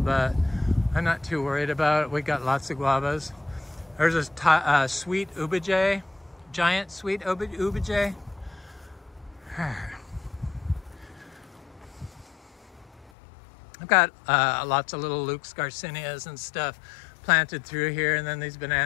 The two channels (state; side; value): drops out; right; at 13.1 s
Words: but I'm not too worried about it. We got lots of guavas. There's a sweet ubijay, giant sweet ubijay. I've got lots of little Luke's Garcinias and stuff planted through here, and then these